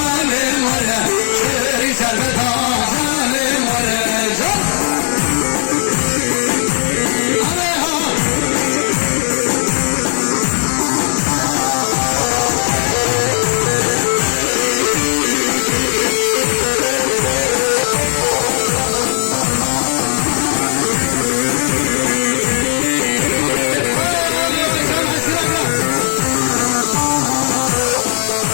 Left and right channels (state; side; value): silent; right; 69 dB below the other